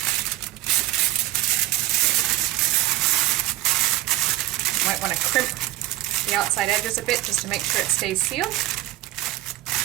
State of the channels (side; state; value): left; quieter; 16.4 dB